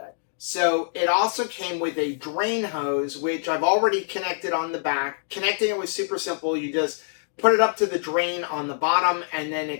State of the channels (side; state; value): right; silent; digital silence